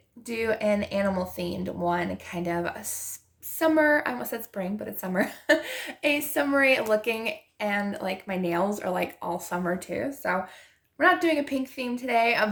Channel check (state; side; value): identical; both; correlation 1.00